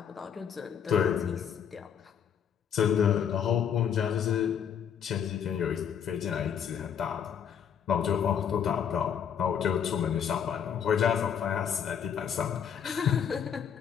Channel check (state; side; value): quieter; right; 8.1 dB